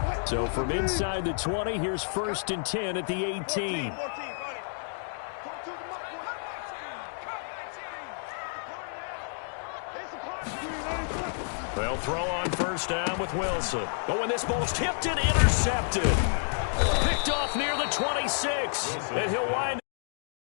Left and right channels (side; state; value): right; silent; digital silence